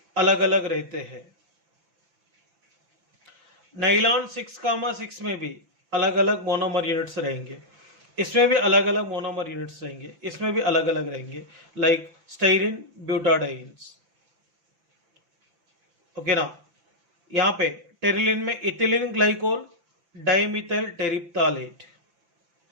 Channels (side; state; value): left; late; 5.9 ms